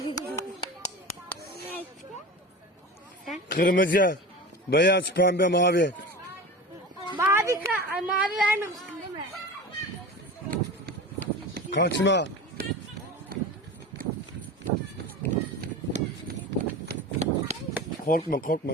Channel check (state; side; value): normal; both; correlation 0.31